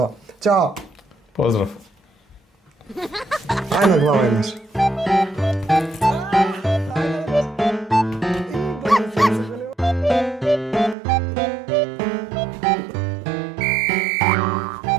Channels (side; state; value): left; drops out; at 11.0 s